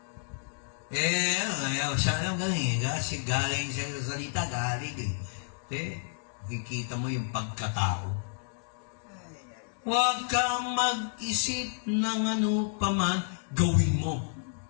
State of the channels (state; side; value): silent; right; digital silence